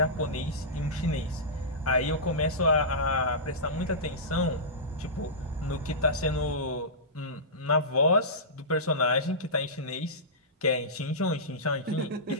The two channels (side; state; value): both; normal; correlation -0.17